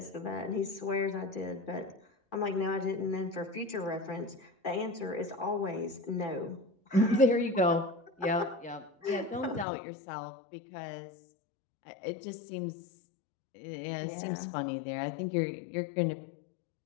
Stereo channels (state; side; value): drops out; right; at 9.7 s